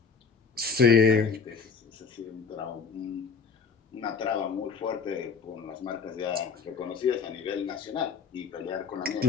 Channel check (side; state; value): right; quieter; 5.5 dB